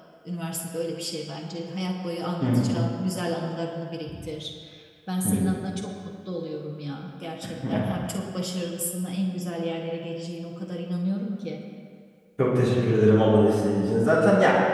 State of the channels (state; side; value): identical; both; correlation 1.00